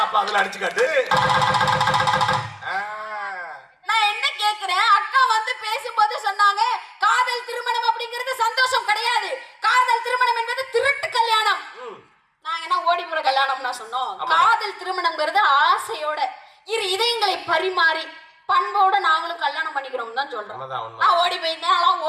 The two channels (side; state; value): both; identical; correlation 1.00